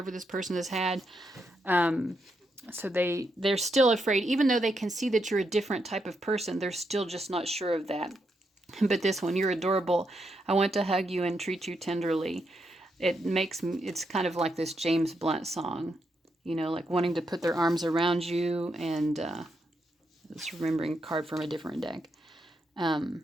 this person has had. So they're still afraid, even though they can see that you're a different type of person, they're still just not sure of that. But this one, you're adorable. I want to hug you and treat you tenderly. It's kind of like this James Blunt song, like wanting to put their arms around you, and just remembering a card from a different deck.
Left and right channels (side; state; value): both; normal; correlation 0.81